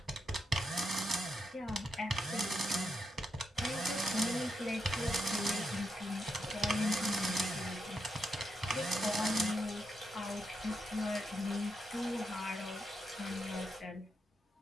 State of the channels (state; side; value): normal; both; correlation 0.83